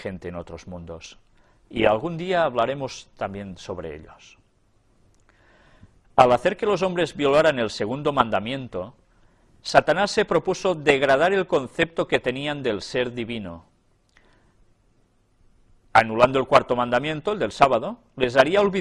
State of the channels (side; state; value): both; identical; correlation 1.00